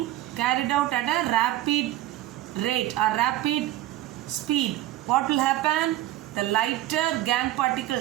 carried out at a rapid rate or rapid speed, what will happen? The lighter gangue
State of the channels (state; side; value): quieter; left; 14.8 dB